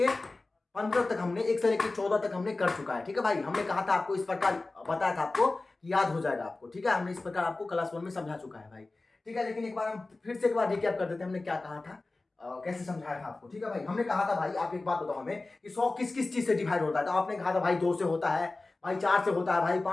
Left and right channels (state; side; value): quieter; right; 3.3 dB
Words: 15 तक, हमने 1 से लेके 14 तक हमने कर चुका है, ठीक है भाई। हमने कहा था आपको, इस प्रकार बताया था आपको, याद हो जाएगा आपको, ठीक है। हमने इस प्रकार आपको क्लास 1 में समझा चुका है भाई, ठीक है। लेकिन एक बार हम फिर से एक बार रिकैप कर देते हैं, हमने क्या कहा था, कैसे समझाया था आपको, ठीक है भाई। हमने कहा था भाई, आप एक बात बताओ हमें कि 100 किस किस चीज से डिवाइड होता है। तो आपने कहा था भाई 2 से होता है भाई, 4 से होता है भाई,